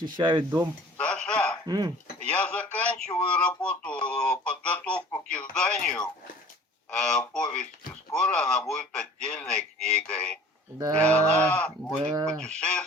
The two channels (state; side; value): normal; both; correlation 0.47